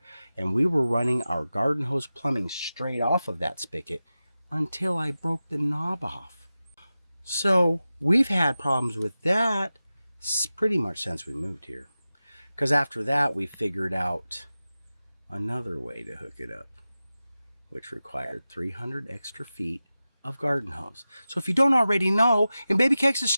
And we were running our garden hose plumbing straight off of that spigot until I broke the knob off. So we've had problems with that pretty much since we moved here. Because after that, we figured out another way to hook it up, which required 300 extra feet of garden hose. So if you don't already know, in Baby Cakes'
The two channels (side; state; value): both; inverted; correlation -0.94